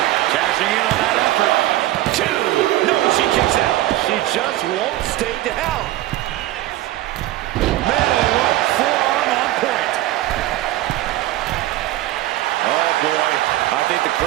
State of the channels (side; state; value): left; quieter; 15.6 dB